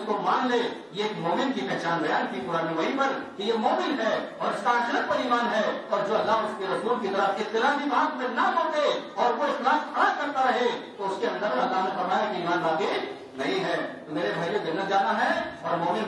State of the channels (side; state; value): both; identical; correlation 1.00